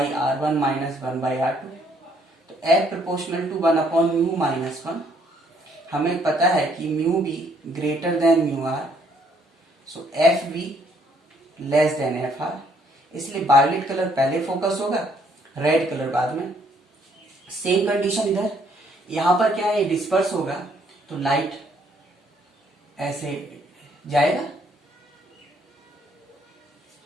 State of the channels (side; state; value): both; normal; correlation 0.67